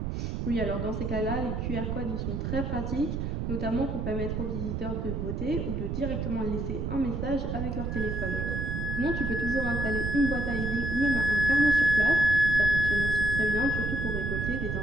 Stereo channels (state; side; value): noise; right; rumble, 2 dB below the sound